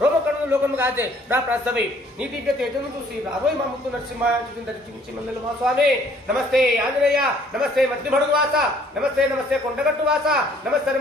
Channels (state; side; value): normal; both; correlation 0.60